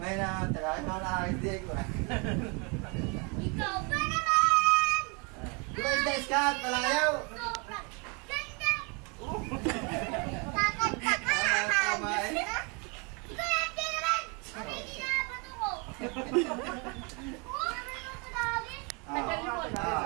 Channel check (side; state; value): left; quieter; 32.0 dB